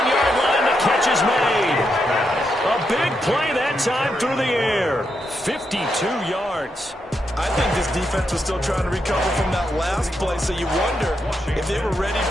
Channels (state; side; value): normal; both; correlation 0.82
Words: line, the catch is made. A big play that time through the air. 52 yards. I think this defense was still trying to recover from that last play, so you wonder if they were ready